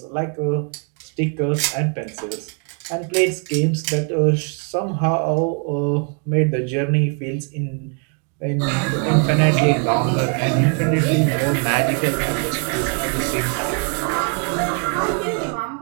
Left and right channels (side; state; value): left; quieter; 39.3 dB